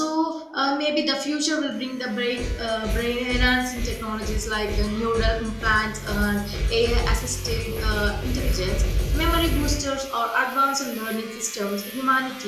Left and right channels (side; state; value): both; identical; correlation 1.00